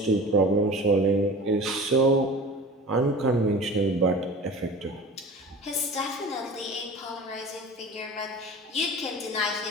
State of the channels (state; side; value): normal; both; correlation 0.38